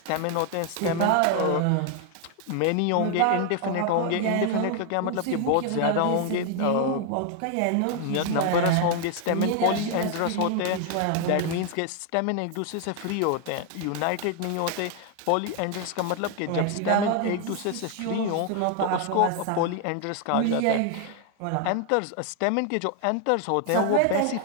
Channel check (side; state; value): both; different; correlation 0.00